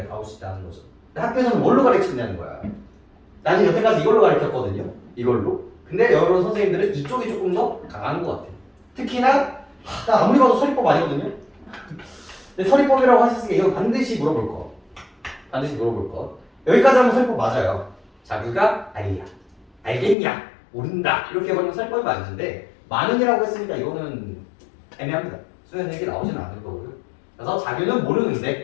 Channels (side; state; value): right; drops out; at 20.2 s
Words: 나올 수 있다는 거죠. 근데 학교에서는 뭘로 가르치냐는 거야. 나는 여태까지 이걸로 가르쳤거든요. 이걸로. 근데 여러 선생님들은 이쪽이 조금 더 강한 것 같아요. 특히나 나 아무리 봐도 서리법 아니거든요. 근데 서리법이라고 하셨으니까 이거 반드시 물어볼 거. 반드시 물어볼 거. 여기까지 하면 서리법 맞아요. 자규가 알이야. 알겠냐? 모른다. 이렇게 해버리면 서리법이 맞는데 많은이라고 했으니까 이거는 애매합니다. 수련 얘기 나오지는 않을 거고요. 그래서 자규는 모르는데